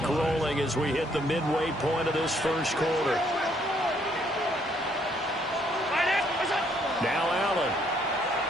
rolling as we hit the midway point of this 1st quarter. Now Allen.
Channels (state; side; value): normal; both; correlation 0.68